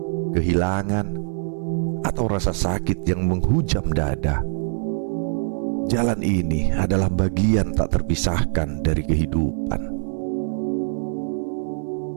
kehilangan, atau rasa sakit yang menghujam dada. Jalan ini adalah bagian tak terpisahkan dari kehidupan.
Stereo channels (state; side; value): silent; left; 57 dB below the other